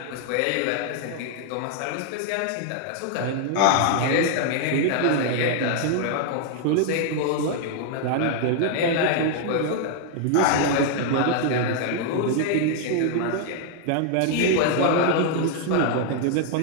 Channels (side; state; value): both; different; correlation 0.00